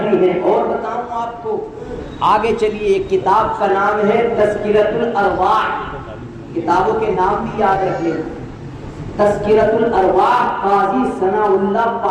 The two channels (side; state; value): both; identical; correlation 1.00